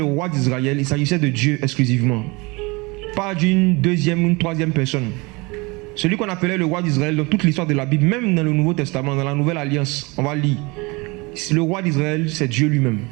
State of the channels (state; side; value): quieter; left; 26.1 dB